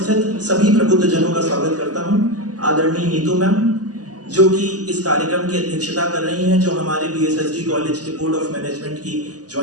सभी प्रबुद्ध जनों का स्वागत करता हूं। आदरणीय नीतू मैम जो कि इस कार्यक्रम की अध्यक्षता कर रही हैं, जो हमारे बीएसएसडी कॉलेज के बोर्ड ऑफ मैनेजमेंट की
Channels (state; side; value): late; left; 0.67 ms